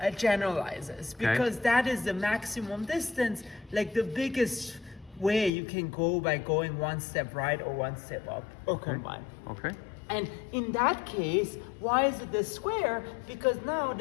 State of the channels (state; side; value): drops out; right; at 5.5 s